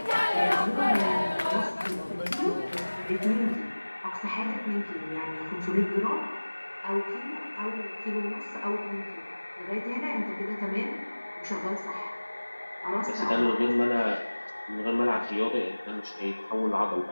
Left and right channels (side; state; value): both; inverted; correlation -1.00